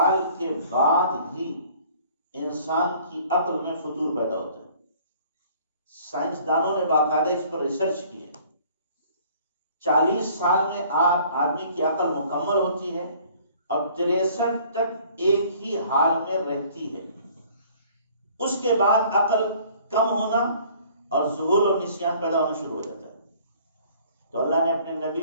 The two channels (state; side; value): inverted; both; correlation -0.55